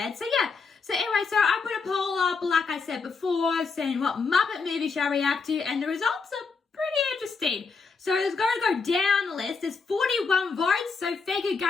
So yeah, so anyway, so I put a poll up, like I said before, saying what Muppet movie shall I react to, and the results are pretty interesting. So it's going to go down the list. There's 41 votes, so thank you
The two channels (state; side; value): quieter; right; 4.8 dB